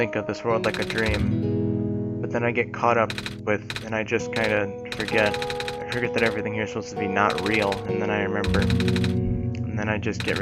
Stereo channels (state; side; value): identical; both; correlation 1.00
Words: of this world like a dream. But then I get caught up with, and I just kind of forget. I forget that everything here is supposed to be not real, and then I remember. And then I just get